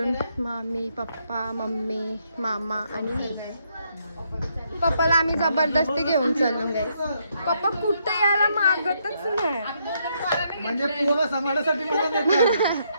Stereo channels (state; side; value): inverted; both; correlation -0.75